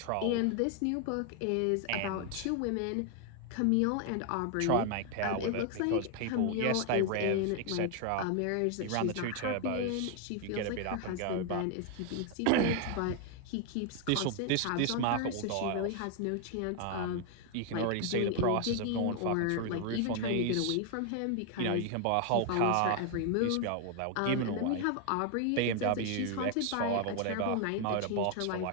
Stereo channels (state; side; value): different; both; correlation 0.00